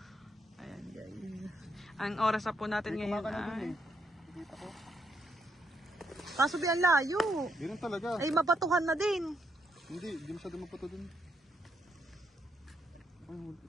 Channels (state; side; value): normal; both; correlation 0.77